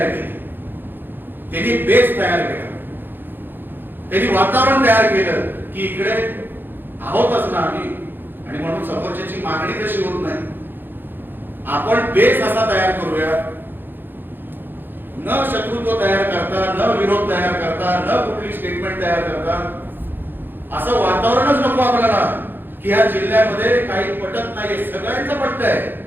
केली, त्यांनी बेस तयार केला, त्यांनी वातावरण तयार केलं की इकडे आहोतच ना आम्ही, आणि म्हणून समोरच्याची मागणी तशी होत नाही. आपण बेस असा तयार करूया, न शत्रुत्व तयार करता, न विरोध तयार करता, न कुठली स्टेटमेंट तयार करता. असं वातावरणच नको आपल्याला की या जिल्ह्यामध्ये काही पटत नाहीये. सगळ्यांचं पटत आहे,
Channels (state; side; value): late; left; 0.096 ms